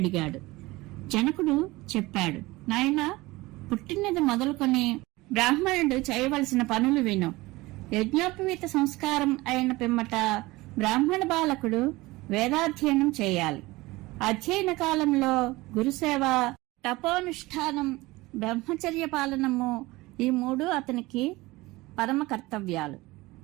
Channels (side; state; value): left; quieter; 20.7 dB